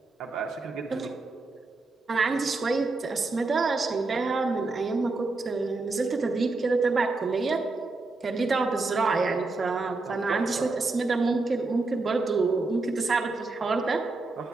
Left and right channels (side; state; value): left; quieter; 3.5 dB